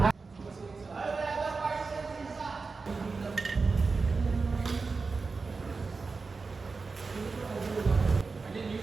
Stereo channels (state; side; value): quieter; left; 4.3 dB